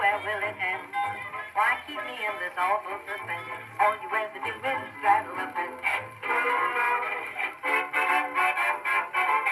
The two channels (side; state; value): both; identical; correlation 1.00